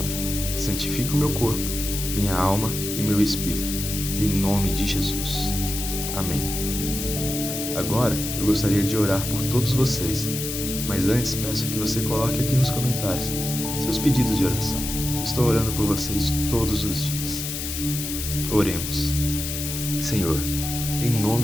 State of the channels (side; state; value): left; noise; hiss, 5 dB below the sound